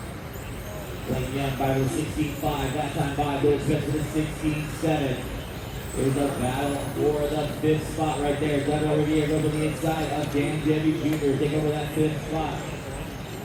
Blake Young by the 16.5. That time by Billy Spence with the 16.7. Here's a battle for the 5th spot right there. Doug over here goes on the inside of Dan Jevy Jr. Take over that 5th spot.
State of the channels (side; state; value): both; identical; correlation 1.00